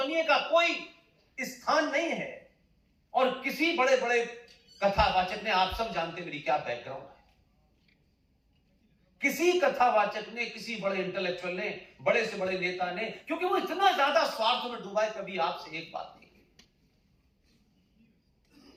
का कोई स्थान नहीं है। और किसी बड़े बड़े कथावाचक ने, आप सब जानते मेरी क्या बैकग्राउंड है, किसी कथावाचक ने, किसी बड़े इंटेलेक्चुअल ने, बड़े से बड़े नेता ने, क्योंकि वो इतना ज्यादा स्वार्थ में डूबा है, कभी आपसे एक बात नहीं की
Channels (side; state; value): both; identical; correlation 1.00